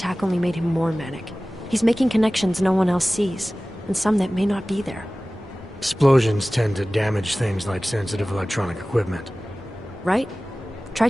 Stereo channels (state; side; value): normal; both; correlation 0.97